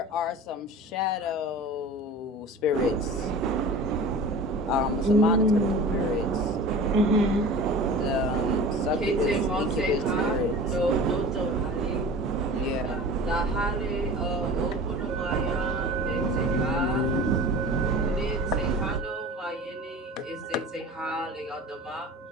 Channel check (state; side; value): normal; both; correlation 0.38